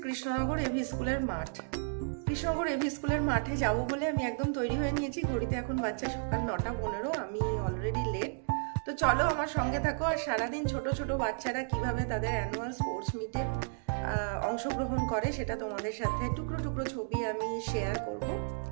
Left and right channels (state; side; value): silent; left; digital silence